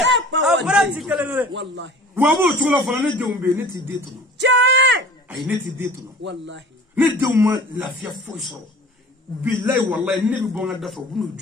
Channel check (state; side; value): normal; both; correlation 0.44